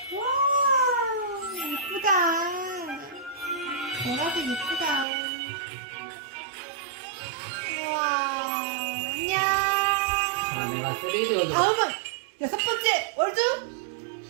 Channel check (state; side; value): drops out; left; at 5.1 s